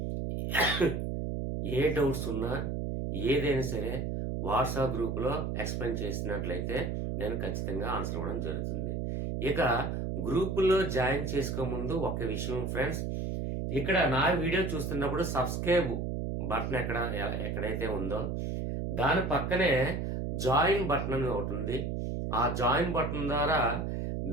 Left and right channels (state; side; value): noise; right; hum, 2 dB below the sound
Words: ఏ డౌట్స్ ఉన్నా ఏదైనా సరే వాట్సాప్ గ్రూప్లో ఎక్స్ప్లెయిన్ చేసినట్లయితే నేను ఖచ్చితంగా ఆన్సర్ ఇవ్వడం జరుగుతుంది. ఇక గ్రూపుల్లో జాయిన్ చేసుకోముందు ఒక విషయం ఫ్రెండ్స్, ఇక్కడ నా వీడియో చూస్తున్నప్పుడు సబ్స్క్రైబ్ బటన్ ఎక్కడైతే ఉందో దాని పక్కనే జాయిన్ బటన్ అని ఒకటి ఉంది. ఆ జాయిన్ బటన్ ద్వారా